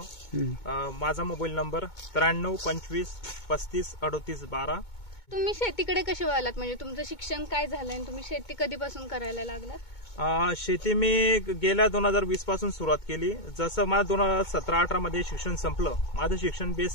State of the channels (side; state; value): right; late; 2.2 ms